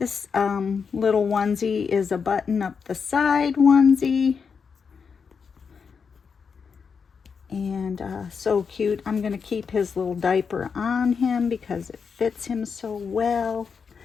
little onesie is a button up the side onesie. And so cute. I'm going to keep his little diaper on him because it fits him so well.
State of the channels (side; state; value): right; quieter; 5.9 dB